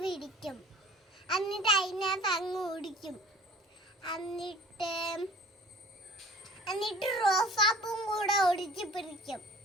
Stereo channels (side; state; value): both; normal; correlation 0.48